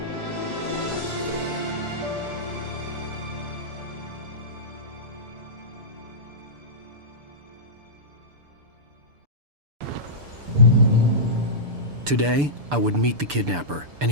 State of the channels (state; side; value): late; left; 6.9 ms